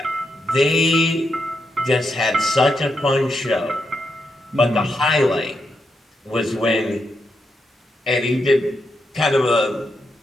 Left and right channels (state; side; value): normal; both; correlation 0.83